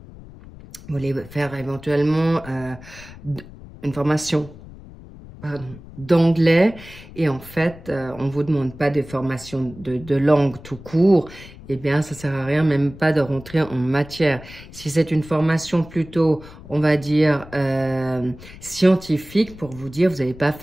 voulez faire éventuellement une formation d'anglais et en fait, on vous demande pas des formations de langue tout court, eh bien, ça sert à rien, même pas de rentrer en matière. Si c'est une formation plutôt, on va dire, scientifique, pour vous dire, vous n'allez pas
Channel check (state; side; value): noise; left; rumble, 18 dB below the sound